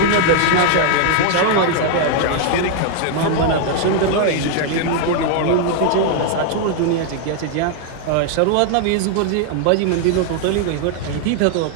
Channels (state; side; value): different; both; correlation 0.00